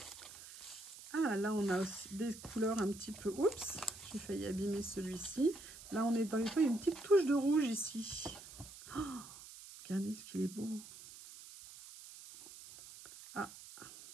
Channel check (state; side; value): noise; right; hiss, 15 dB below the sound